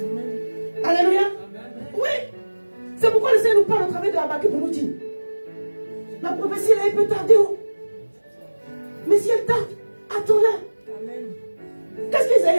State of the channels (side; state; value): both; inverted; correlation -1.00